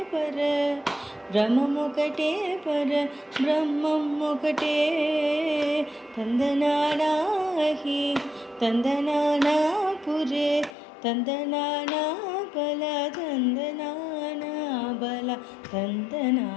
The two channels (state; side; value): drops out; right; at 10.8 s